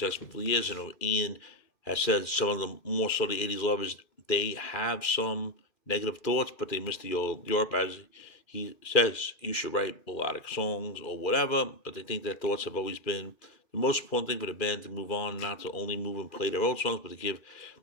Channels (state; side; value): late; right; 2.4 ms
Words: years. And Ian has said some of the more so the '80s lovers, they have some negative thoughts, but they miss the old Europe. As he says, you should write melodic songs or whatever, but they think their thoughts have always been the most important thing for the band to move on, not to only move and play their old songs, but to give